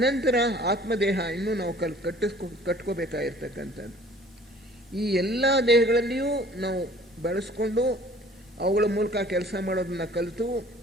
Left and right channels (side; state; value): both; normal; correlation 0.52